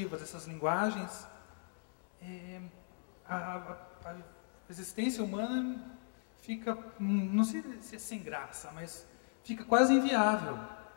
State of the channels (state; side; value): silent; right; 53 dB below the other